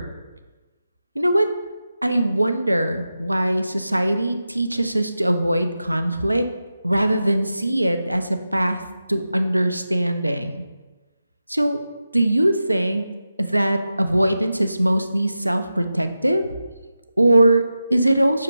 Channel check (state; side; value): inverted; both; correlation -0.92